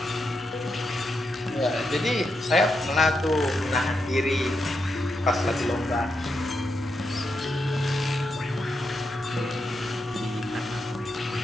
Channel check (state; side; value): normal; both; correlation 0.84